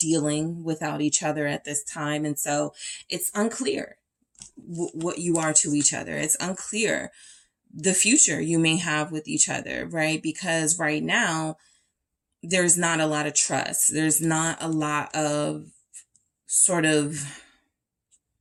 without each other at this time. And so it's unclear what you are to each other. It's unclear the future you may have with each other, right? Because right now, there's not a lot of trust. There's not a lot of sort of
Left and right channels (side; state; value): both; identical; correlation 1.00